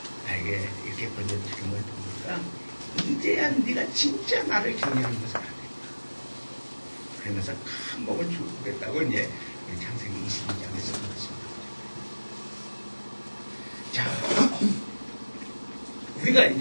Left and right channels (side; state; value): both; inverted; correlation -1.00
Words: 이렇게 번져주는 걸 보니까 이제야 네가 진짜 나를 경외하는 것을 알겠다. 그러면서 큰 목을 주겠다고 이제 창세기 22장에서 말씀합니다. 자, 우리가